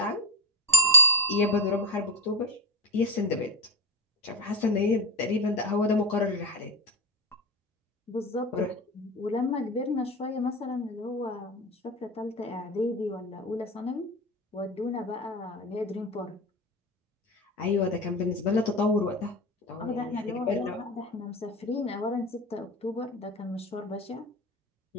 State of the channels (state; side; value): normal; both; correlation 0.16